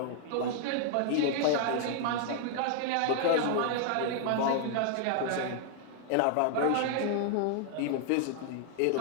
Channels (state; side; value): different; both; correlation 0.00